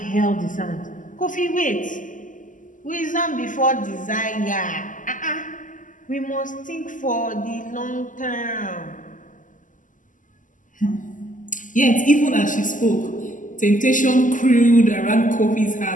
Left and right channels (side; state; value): right; late; 0.38 ms